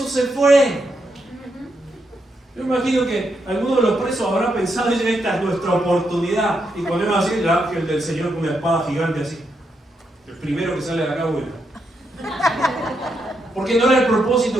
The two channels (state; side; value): normal; both; correlation 0.81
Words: se fue. Yo imagino que alguno de los presos habrá pensado en esta es nuestra oportunidad. Y ponemos así el ángel del Señor con una espada gigante así. El primero que sale de acá vuela. Porque no era el